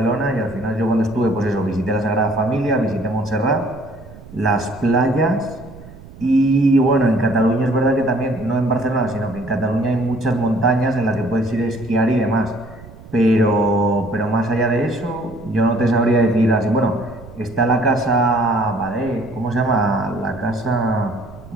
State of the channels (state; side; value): noise; right; rumble, 19 dB below the sound